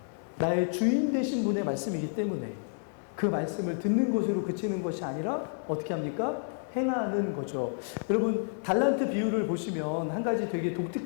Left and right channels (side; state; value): right; silent; digital silence